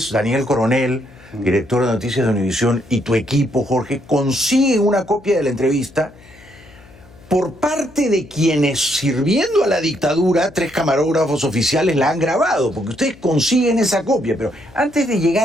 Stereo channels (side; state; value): left; noise; hum, 24 dB below the sound